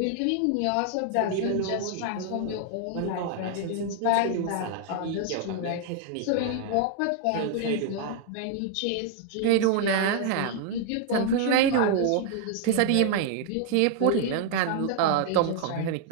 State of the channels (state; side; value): different; both; correlation 0.00